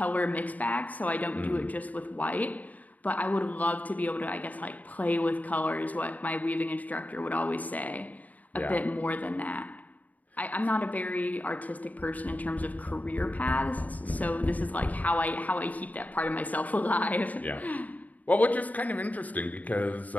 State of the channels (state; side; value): late; right; 0.075 ms